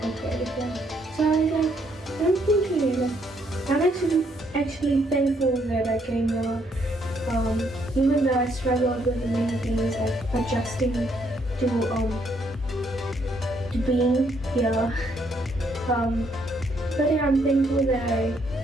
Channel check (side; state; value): both; normal; correlation 0.71